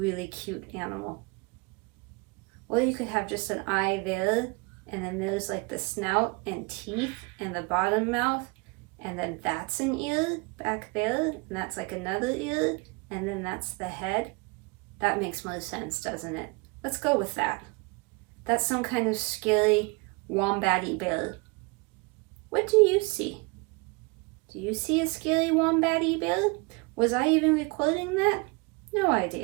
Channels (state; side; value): quieter; left; 28.5 dB